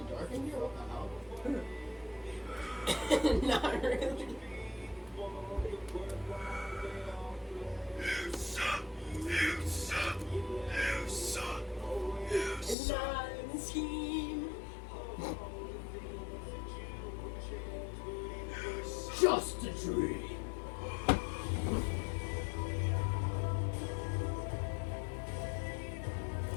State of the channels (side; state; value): right; drops out; at 12.8 s